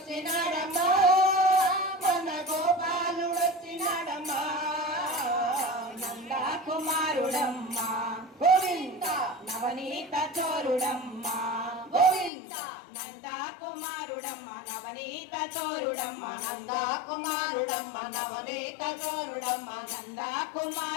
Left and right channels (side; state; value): right; drops out; at 12.3 s